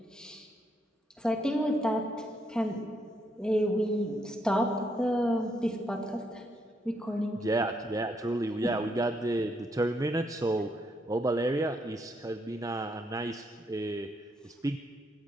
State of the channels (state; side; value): normal; both; correlation 0.76